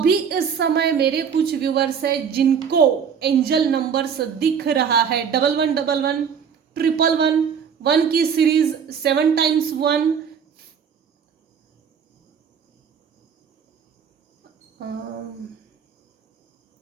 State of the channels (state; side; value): quieter; left; 7.1 dB